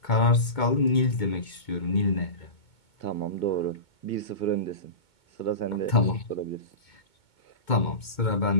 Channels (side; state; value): right; late; 2.2 ms